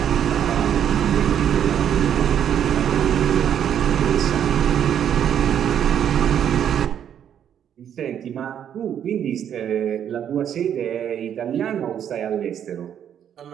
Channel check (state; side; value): quieter; left; 9.3 dB